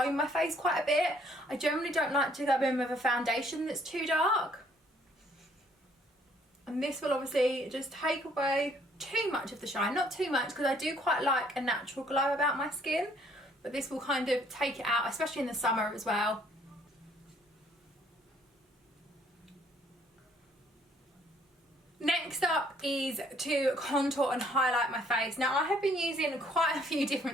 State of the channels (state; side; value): normal; both; correlation 0.63